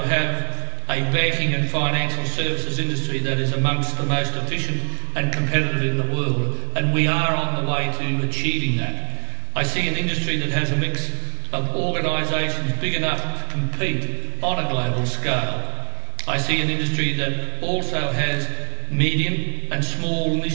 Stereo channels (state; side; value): silent; left; 56 dB below the other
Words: have a banking and financial services industry that is amongst the most efficient and competitive in the world, and we are on the way to achieving that. I see an industry that has a mix of organisations big enough to compete on a global scale. I see an industry that also has medium and small